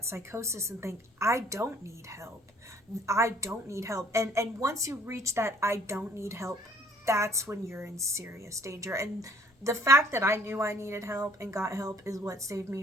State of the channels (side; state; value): both; normal; correlation 0.57